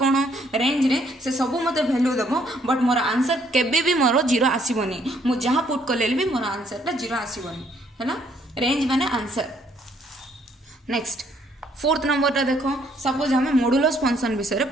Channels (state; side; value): normal; both; correlation 0.67